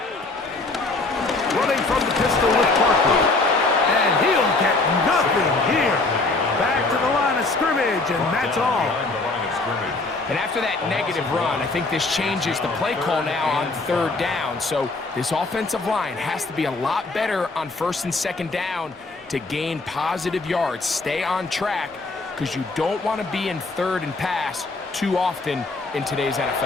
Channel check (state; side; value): quieter; right; 3.4 dB